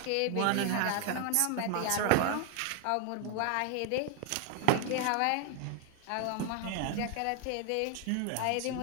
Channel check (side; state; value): both; different; correlation 0.00